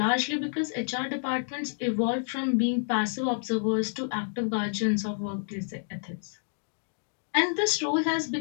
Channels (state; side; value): silent; right; digital silence